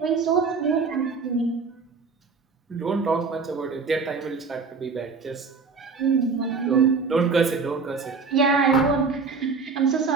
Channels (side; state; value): left; quieter; 4.8 dB